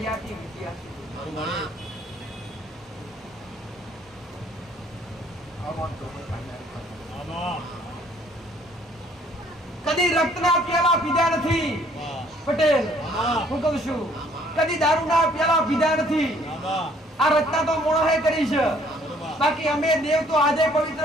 વિદ્યાર્થી કદી રક્તના પ્યાલા પીધા નથી પટેલ. હું કહું છું કદી દારૂના પ્યાલા પીધા નથી. આ રચના તો મોણોએ કરી છે. બાકી અમે દેવ તો આજે પવિત્ર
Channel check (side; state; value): both; normal; correlation 0.61